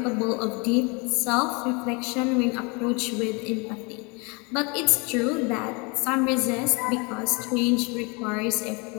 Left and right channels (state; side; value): quieter; right; 30.0 dB